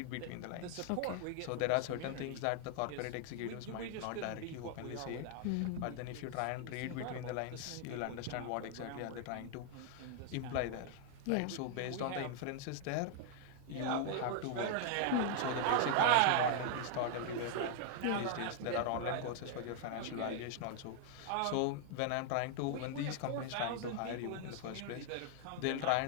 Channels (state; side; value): different; both; correlation 0.00